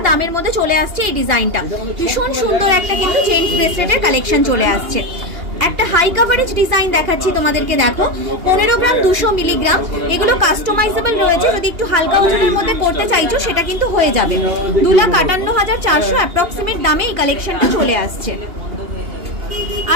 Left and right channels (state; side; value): late; left; 2.8 ms